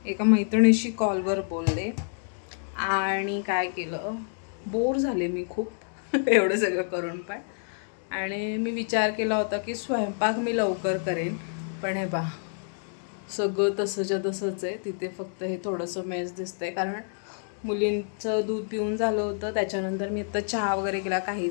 एका मैत्रिणीशी कॉलवर बोलले आणि काय केलं, बोर झाले मी खूप एवढं सगळं करून पण. आणि मी विचार केला होता की स्वयंपाक मी लवकर करेन, पण हे बा सगळं तसंच्या तसंच आहे. तिथे फक्त हे थोडंसं मेस दिसतंय, कारण मुलींचं दूध पिऊन झालं होतं, त्याच्यानंतर मी आता चहा वगैरे केला,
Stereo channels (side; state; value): right; silent; digital silence